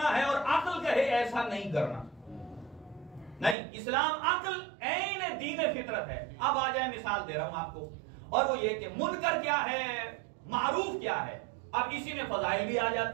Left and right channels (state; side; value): drops out; left; at 3.6 s